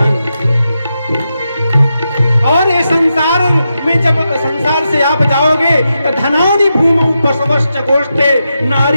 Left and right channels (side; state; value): both; inverted; correlation -0.87